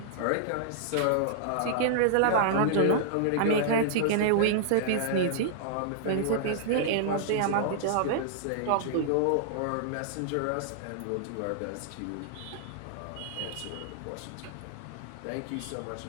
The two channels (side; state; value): both; different; correlation -0.01